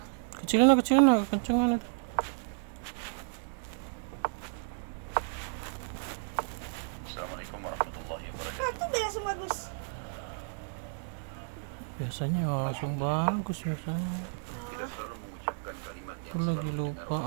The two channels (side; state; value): left; silent; digital silence